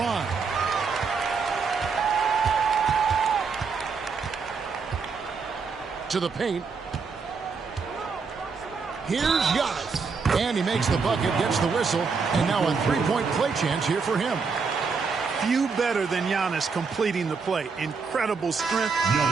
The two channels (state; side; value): quieter; left; 5.1 dB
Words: To the paint. Here's Giannis. And he makes the bucket, gets the whistle, and now a three-point play chance here for him. Few better than Giannis completing the play. Incredible strength,